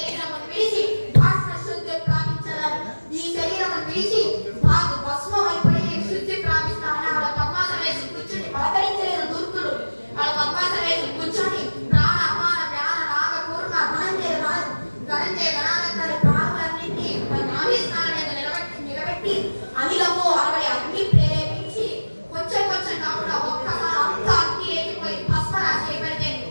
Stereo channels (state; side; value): inverted; both; correlation -1.00